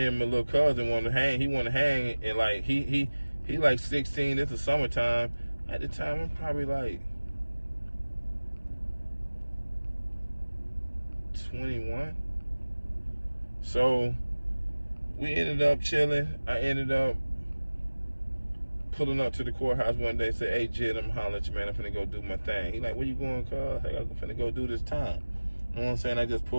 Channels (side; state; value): both; inverted; correlation -1.00